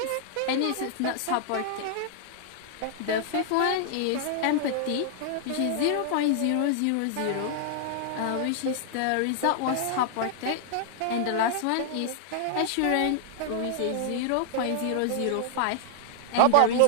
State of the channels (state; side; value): different; both; correlation -0.01